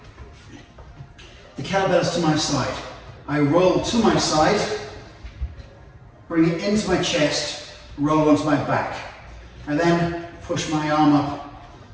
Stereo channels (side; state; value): both; identical; correlation 1.00